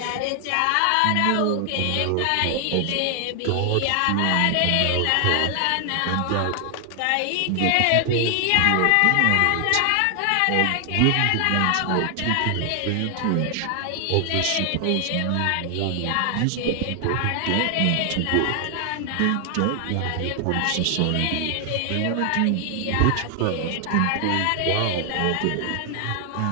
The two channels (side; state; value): both; different; correlation 0.00